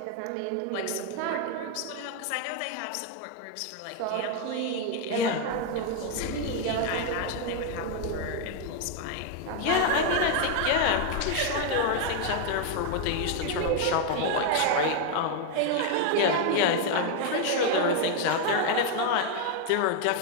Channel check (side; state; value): both; different; correlation 0.01